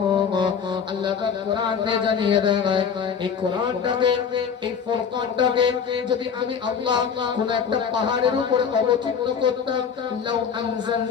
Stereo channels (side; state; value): right; quieter; 6.8 dB